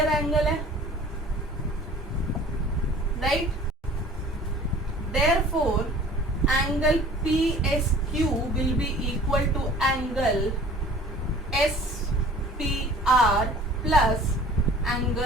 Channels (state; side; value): normal; both; correlation 0.47